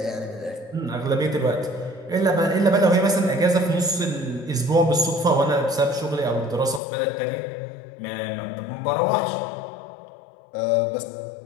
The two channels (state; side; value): drops out; right; at 6.8 s